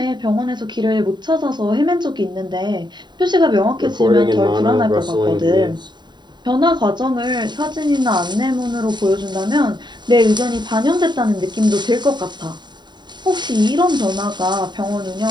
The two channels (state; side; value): late; left; 0.21 ms